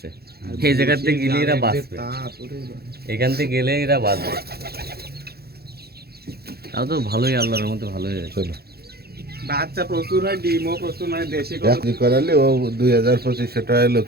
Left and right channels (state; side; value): late; left; 0.46 ms